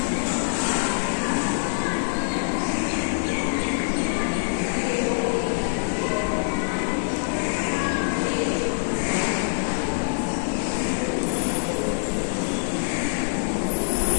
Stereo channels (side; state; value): right; silent; digital silence